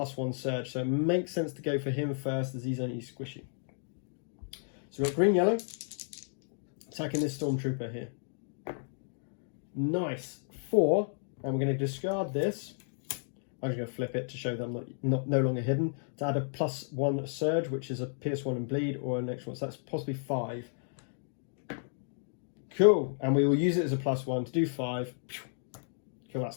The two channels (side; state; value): right; silent; digital silence